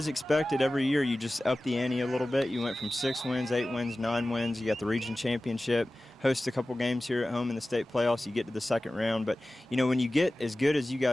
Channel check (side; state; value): both; normal; correlation 0.96